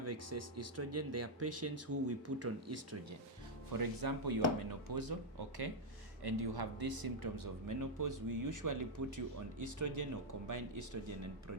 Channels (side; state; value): both; normal; correlation -0.01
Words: excess estrogen, they are patients who we put on estrogen. For example, you are menopausal, okay, and you have these symptoms of menopause. We usually put you on estrogen or combined estrogen and